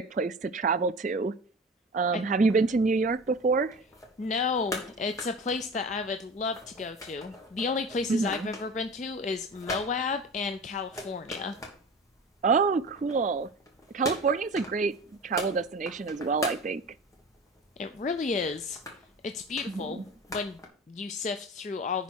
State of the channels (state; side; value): normal; both; correlation 0.34